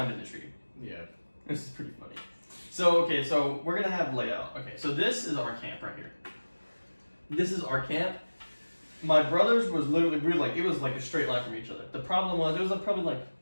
in the tree. Yeah. This is pretty funny. So we're gonna have layout. Okay, so this is our camp right here. This is our camp. My brother's was literally, it was like a straight line from each other. The problem was, it was probably like,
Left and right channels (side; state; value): both; inverted; correlation -1.00